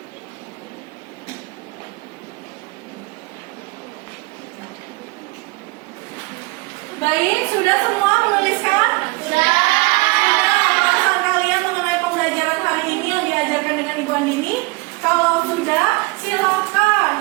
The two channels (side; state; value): left; quieter; 25.5 dB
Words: Baik, sudah semua menuliskan? Sudah. Pembahasan kalian mengenai pembelajaran hari ini yang diajarkan dengan Ibu Andini? Kalau sudah, silakan